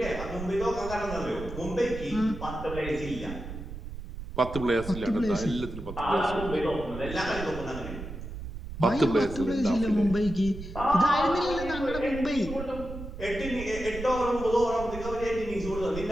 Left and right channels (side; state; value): right; noise; rumble, 10 dB below the sound